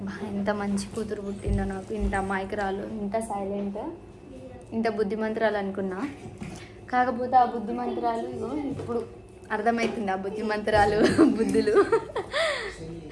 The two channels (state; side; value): identical; both; correlation 1.00